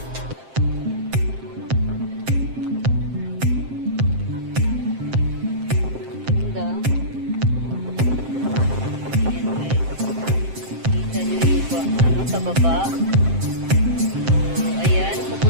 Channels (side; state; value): left; late; 7.6 ms